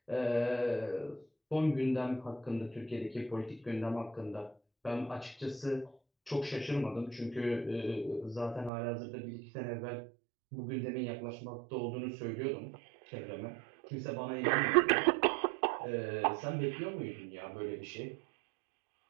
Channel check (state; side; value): drops out; left; at 8.7 s